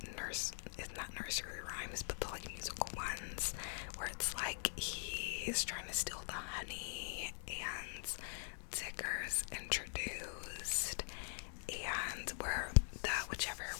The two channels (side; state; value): right; silent; digital silence